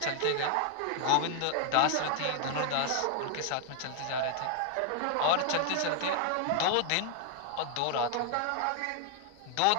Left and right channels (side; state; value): both; different; correlation 0.00